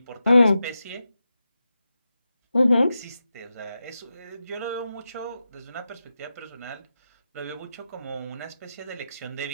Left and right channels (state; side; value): inverted; both; correlation -0.90